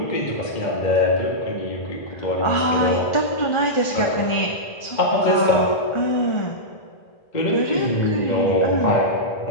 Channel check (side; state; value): right; late; 1.4 ms